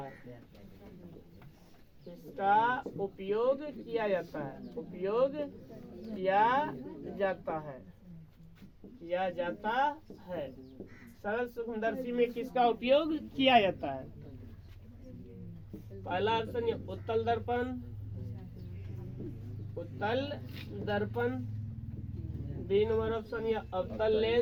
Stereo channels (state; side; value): identical; both; correlation 1.00